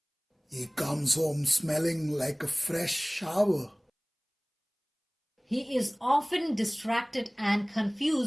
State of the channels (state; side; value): identical; both; correlation 1.00